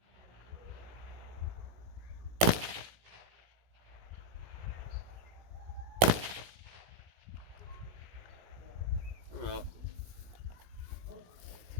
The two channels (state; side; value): late; left; 17 ms